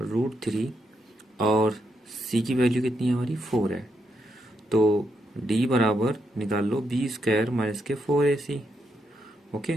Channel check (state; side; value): normal; both; correlation 0.80